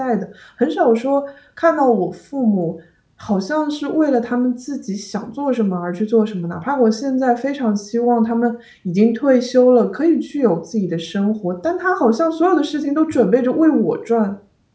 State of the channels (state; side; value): identical; both; correlation 1.00